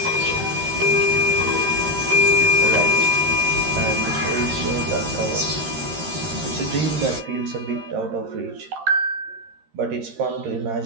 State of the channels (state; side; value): late; left; 13 ms